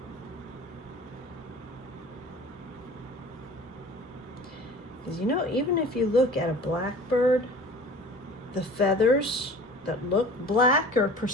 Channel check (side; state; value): both; normal; correlation 0.43